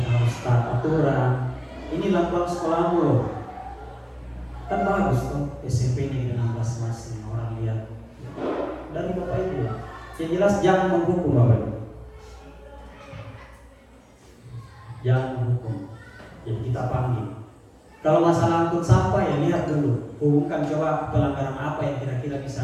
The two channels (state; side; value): identical; both; correlation 1.00